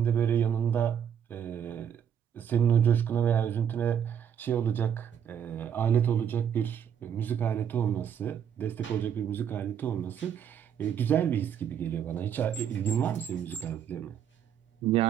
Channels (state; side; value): quieter; left; 8.7 dB